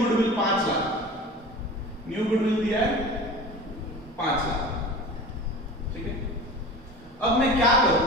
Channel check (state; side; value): normal; both; correlation 0.37